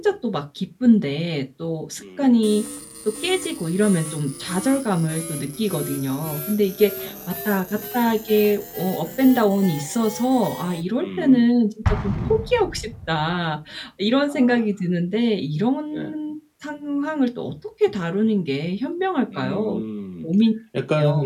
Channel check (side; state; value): both; identical; correlation 1.00